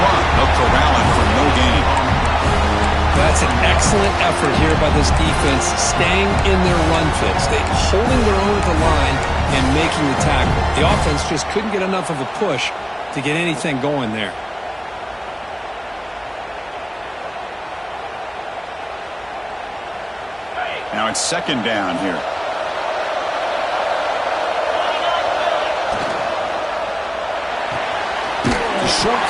run. They'll corral him for no gain. That's an excellent effort here by this defense, staying in their run fits. They're holding their own at the line and making the tackle. The offense just couldn't get enough of a push to get anything going there. Now it's 2nd down here. Short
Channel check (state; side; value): identical; both; correlation 1.00